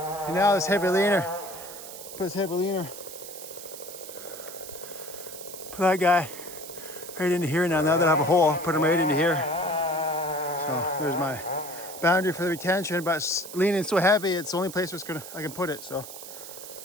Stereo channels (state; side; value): noise; right; hiss, 12 dB below the sound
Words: And now this heavy leaner. Put this heavy leaner. Put that guy right into here now. Now that I have a hole, put him right into here. So there's my boundary for the retention, but it's leaning so heavy, it's the only place where I can put it. So